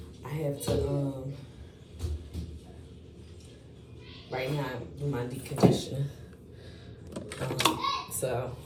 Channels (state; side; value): identical; both; correlation 1.00